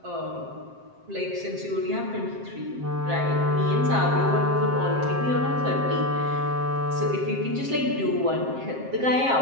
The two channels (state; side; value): late; left; 7.6 ms